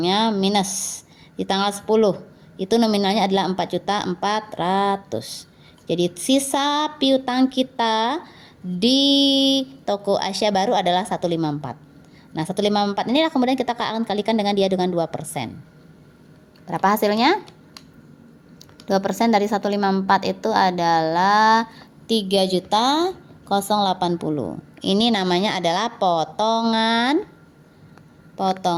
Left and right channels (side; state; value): both; identical; correlation 1.00